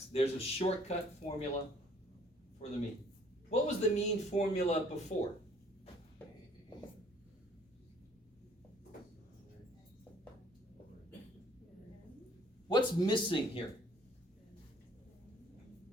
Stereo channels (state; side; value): normal; both; correlation 0.59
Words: there's a shortcut formula for the mean. What was the mean formula before? What's missing here?